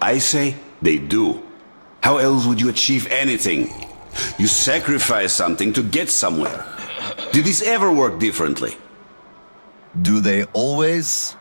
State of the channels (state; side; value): inverted; both; correlation -1.00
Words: I say they do. How else would you achieve anything? You sacrifice something to get somewhere. Did this ever work differently? Do they always?